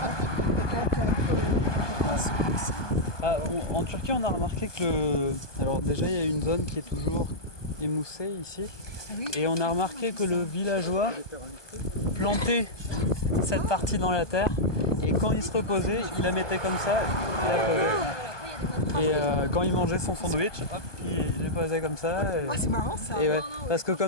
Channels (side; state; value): right; late; 1.2 ms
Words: on peut prendre celui-ci. Ah, en Turquie, on a remarqué que alors déjà, il y a une zone qui est toujours émoussée ici. Oui. Et on a remarqué que le villageois plantait cette partie dans la terre. Et quand il se reposait, il la mettait comme ça. Et la posait. Et quand il mangeait son sandwich, hop, il les posait comme ça. Ah, c'est marrant ça. Et ouais, parce que